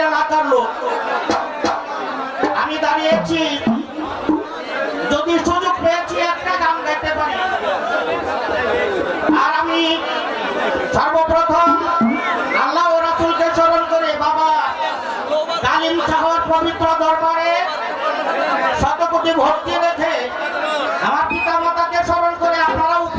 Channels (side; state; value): both; identical; correlation 1.00